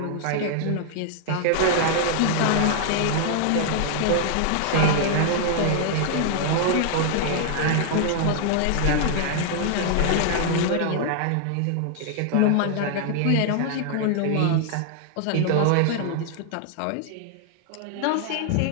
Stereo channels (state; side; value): different; both; correlation -0.01